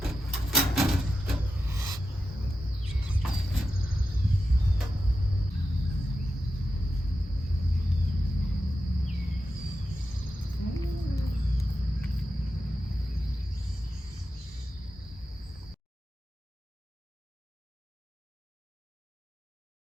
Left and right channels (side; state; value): both; normal; correlation 0.90